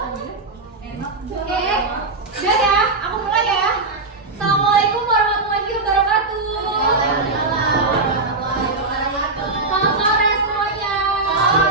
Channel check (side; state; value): left; quieter; 3.5 dB